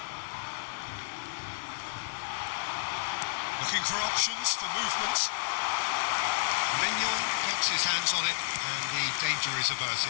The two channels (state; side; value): silent; right; digital silence